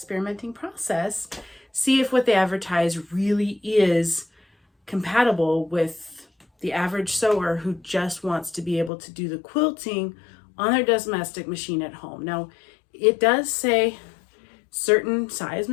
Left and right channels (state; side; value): drops out; right; at 8.9 s